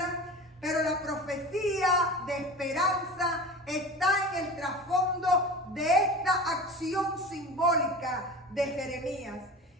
pero la profecía de esperanza está en el trasfondo de esta acción simbólica de Jeremías.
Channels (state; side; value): normal; both; correlation 0.34